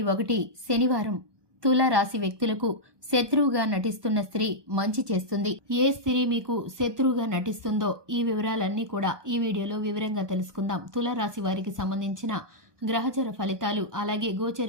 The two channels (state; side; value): late; left; 1.2 ms